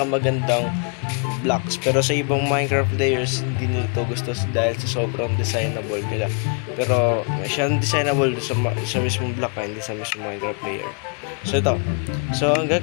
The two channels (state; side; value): quieter; right; 39.6 dB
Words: blocks, pero sa ibang Minecraft players hindi nila ito gusto dahil sa sobrang designable nila. Pero siyang designable sa mismong block, hindi sa mismong Minecraft player. So ito, so ang